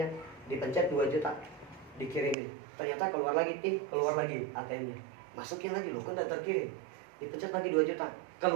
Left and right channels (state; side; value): drops out; left; at 2.4 s